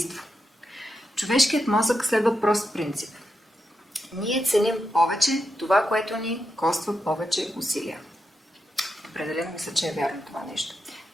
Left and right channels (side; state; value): both; normal; correlation 0.86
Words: Човешкият мозък следва прост принцип. Ние ценим повече това, което ни коства повече усилия. Определено мисля, че е вярно това нещо.